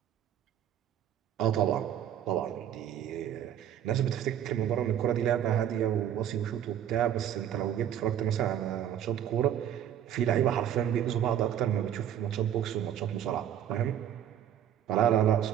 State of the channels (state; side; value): quieter; left; 10.2 dB